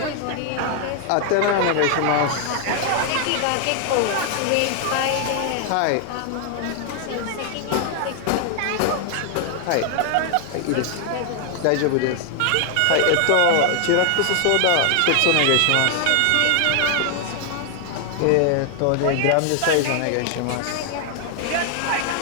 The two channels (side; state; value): both; different; correlation 0.00